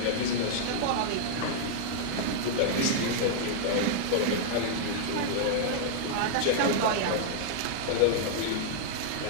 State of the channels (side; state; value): both; different; correlation -0.01